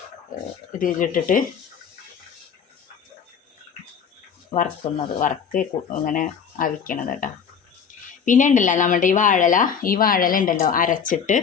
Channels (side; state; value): right; quieter; 7.0 dB